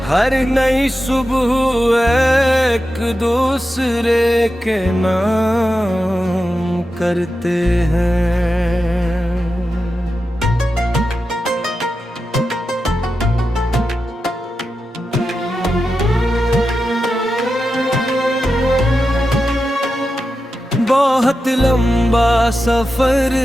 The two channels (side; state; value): both; normal; correlation 0.91